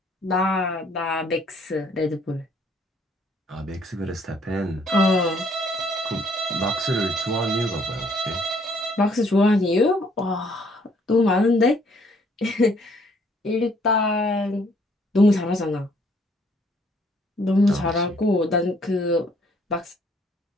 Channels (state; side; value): normal; both; correlation 0.64